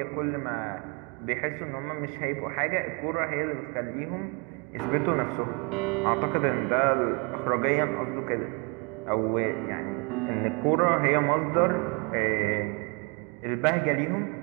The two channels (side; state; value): left; quieter; 32.3 dB